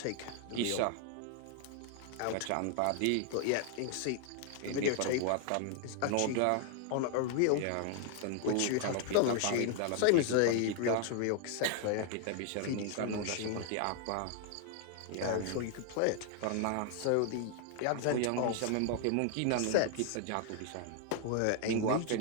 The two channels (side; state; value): both; different; correlation 0.00